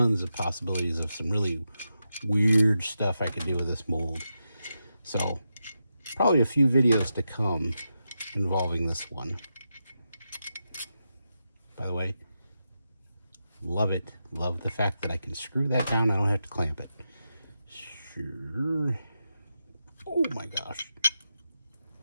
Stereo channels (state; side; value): inverted; both; correlation -0.87